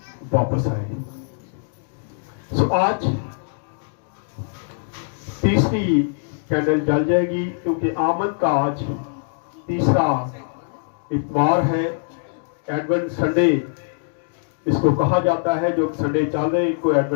वापस आए। आज तीसरी कैंडल जल जाएगी, क्योंकि आमद का आज तीसरा इतवार है। एडवेंट संडे इसको कहा जाता है, जो संडे चल रहे इनको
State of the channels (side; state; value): right; silent; digital silence